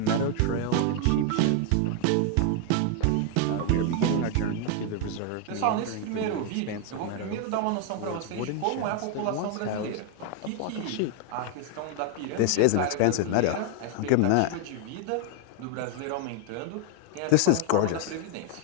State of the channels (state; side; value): different; both; correlation 0.00